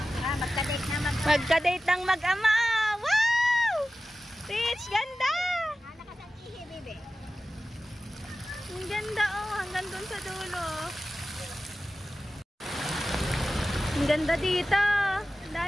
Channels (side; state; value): both; normal; correlation 0.94